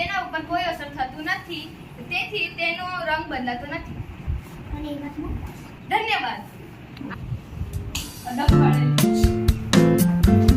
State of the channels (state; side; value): identical; both; correlation 1.00